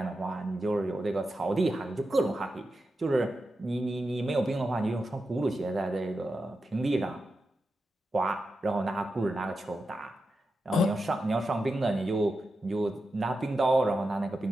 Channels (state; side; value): normal; both; correlation 0.90